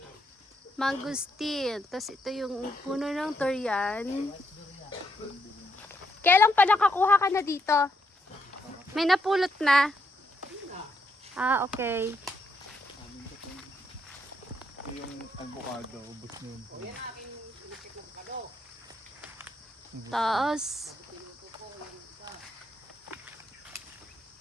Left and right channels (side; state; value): both; normal; correlation 0.77